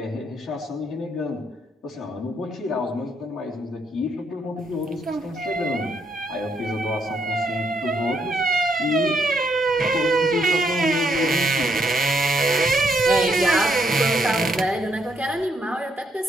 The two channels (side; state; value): both; normal; correlation 0.74